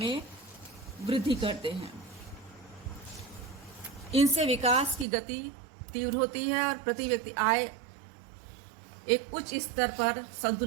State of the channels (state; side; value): drops out; left; at 5.1 s